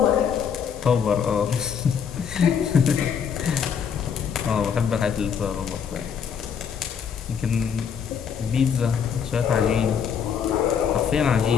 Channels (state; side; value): quieter; right; 7.3 dB